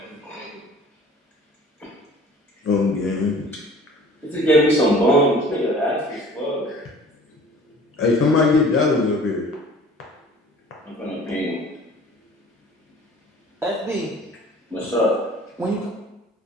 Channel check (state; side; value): normal; both; correlation 0.48